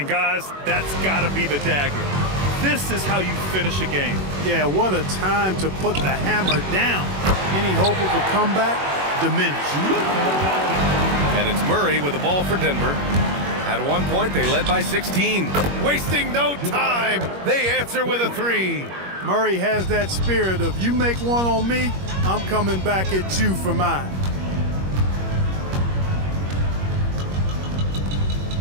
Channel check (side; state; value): left; late; 21 ms